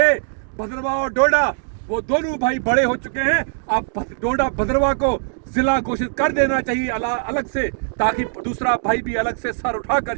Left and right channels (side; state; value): left; silent; digital silence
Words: भद्रवाह और डोडा, वो दोनों भाई बड़े हो चुके हैं। अब डोडा भद्रवाह को जिला घोषित कर देना चाहिए अलग से, ताकि दूसरा भाई भी अलग से सर उठाकर